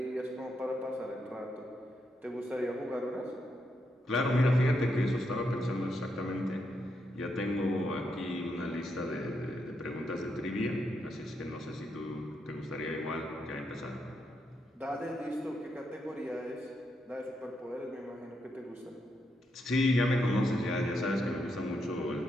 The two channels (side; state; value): both; normal; correlation 0.81